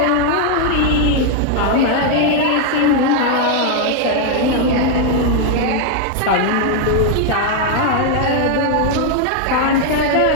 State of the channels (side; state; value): both; different; correlation 0.00